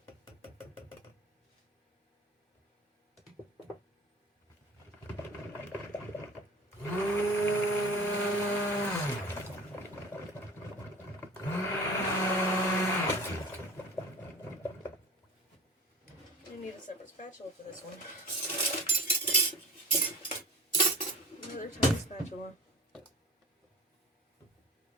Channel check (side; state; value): both; normal; correlation 0.39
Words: I need a separate spatula for this one. Another tiny spatula.